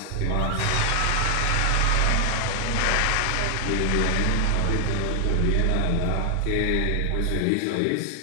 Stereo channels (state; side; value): different; both; correlation 0.00